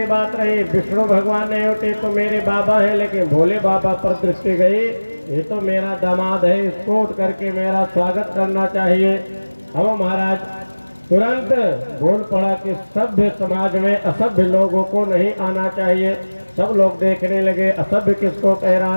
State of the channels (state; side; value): inverted; both; correlation -1.00